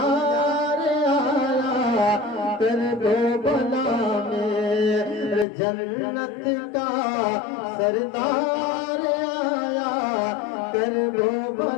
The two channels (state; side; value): drops out; right; at 5.5 s